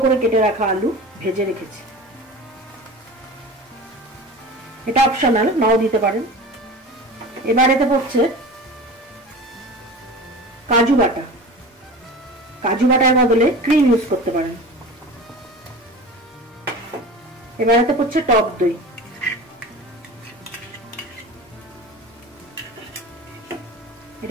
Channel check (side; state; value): both; normal; correlation 0.35